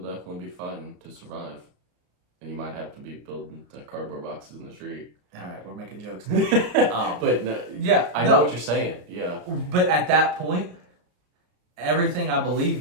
definitely be fighting to survive. And you might have to be building the cardboard boxes in the street. All right, we're making jokes. But no, yeah, I know what you're saying. Yeah. But at that point, everything I believe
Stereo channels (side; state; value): left; late; 33 ms